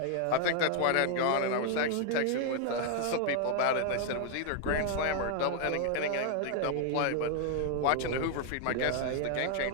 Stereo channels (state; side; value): different; both; correlation 0.00